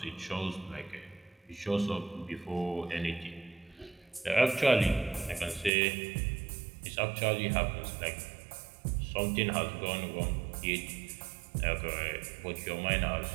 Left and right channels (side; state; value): left; drops out; at 5.7 s